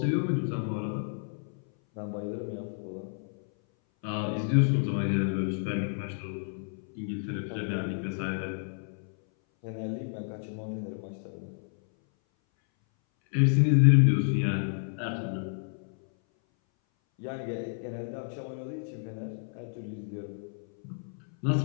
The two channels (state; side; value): silent; right; 57 dB below the other